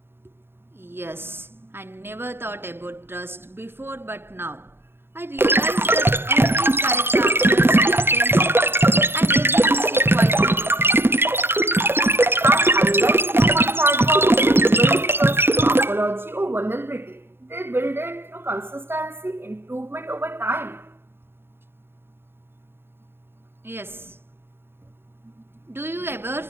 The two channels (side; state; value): left; late; 0.11 ms